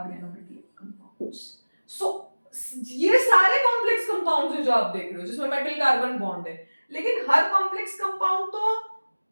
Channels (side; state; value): both; inverted; correlation -1.00